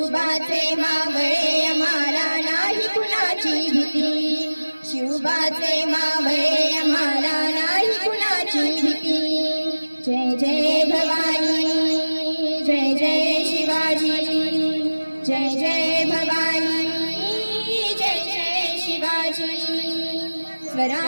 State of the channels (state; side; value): inverted; both; correlation -1.00